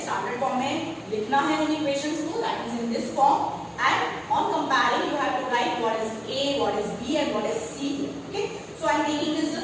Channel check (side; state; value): both; identical; correlation 1.00